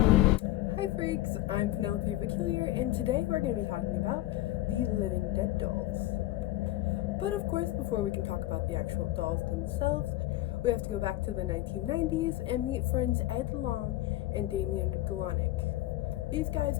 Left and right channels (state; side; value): quieter; right; 16.0 dB